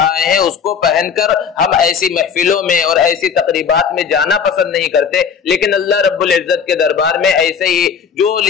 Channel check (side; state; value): right; quieter; 6.7 dB